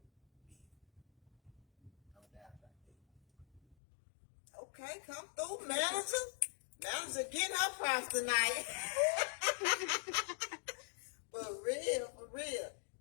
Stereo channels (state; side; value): drops out; right; at 3.8 s